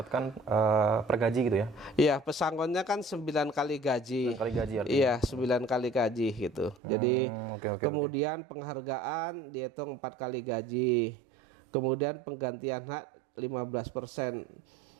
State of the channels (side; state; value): left; drops out; at 6.8 s